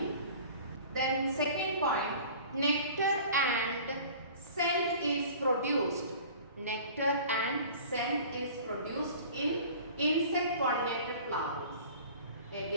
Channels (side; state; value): both; inverted; correlation -0.44